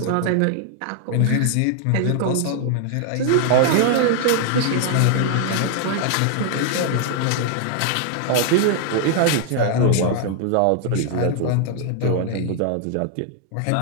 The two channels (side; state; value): both; different; correlation 0.00